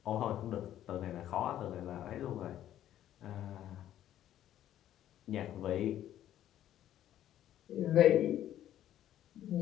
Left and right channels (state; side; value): quieter; right; 11.9 dB